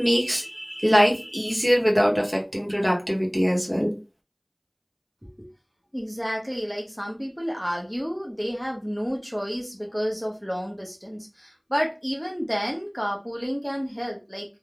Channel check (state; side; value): identical; both; correlation 1.00